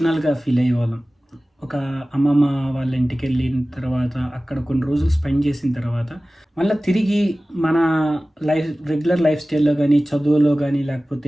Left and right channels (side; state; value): both; normal; correlation 0.97